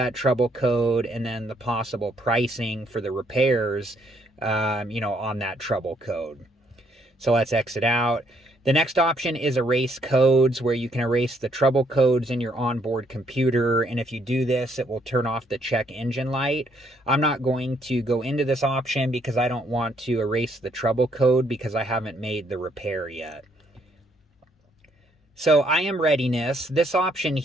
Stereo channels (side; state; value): both; normal; correlation 0.70